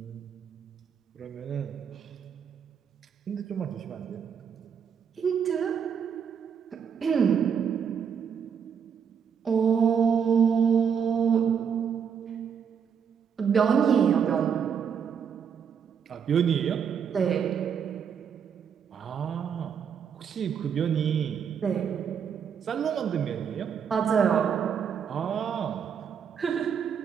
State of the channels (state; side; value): quieter; left; 7.3 dB